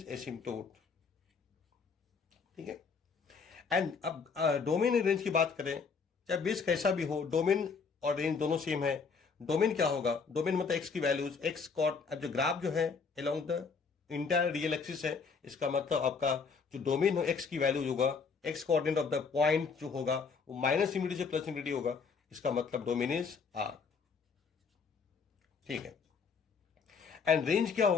एसिम्पटोट, ठीक है। एंड अब डोमेन एंड रेंज की बात करें, चाहे बेस कैसा भी हो, डोमेन और रेंज दोनों सेम है। डोमेन क्या होगा, डोमेन मतलब एक्स की वैल्यूज, एक्स कॉर्ड, अब जो ग्राफ जो है along the entire real axis है, इसका मतलब आपका जो डोमेन हो एक्स की वैल्यूज होगा, x coordinate of the point जो होगा वो माइनस इंफिनिटी से प्लस इंफिनिटी होगा, इसका मतलब डोमेन इज आर, ठीक है। एंड रेंज क्या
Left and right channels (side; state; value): right; quieter; 5.4 dB